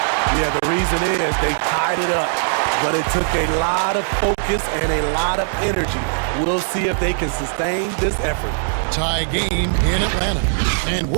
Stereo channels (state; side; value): silent; left; digital silence